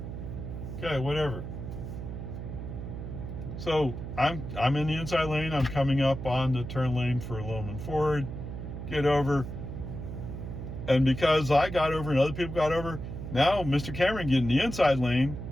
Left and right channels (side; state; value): right; noise; hum, 7 dB below the sound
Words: Okay, whatever. So I'm in the inside lane. I'm coming up on the turn lane for Loman Ford. Get over. And because I got over and other people got over, now Mr. Cameron getting the inside lane.